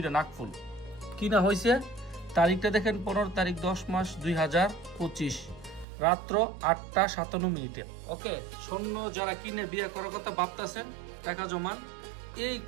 নাকফুল। কিনা হয়েছে তারিখটা দেখেন 15 তারিখ 10 মাস 2025, রাত্র 8টা 57 মিনিটে। ওকে, স্বর্ণ যারা কিনে বিয়ে করার কথা ভাবতেছেন, টাকা জমান। এই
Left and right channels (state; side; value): drops out; left; at 5.9 s